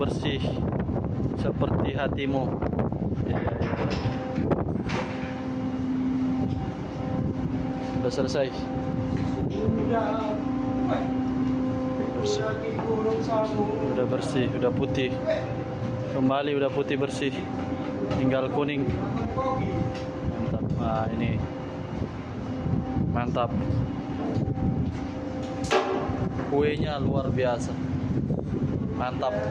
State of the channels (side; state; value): both; identical; correlation 1.00